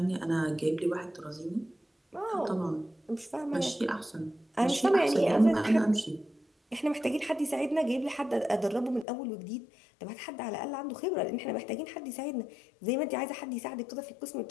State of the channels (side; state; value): right; drops out; at 9.1 s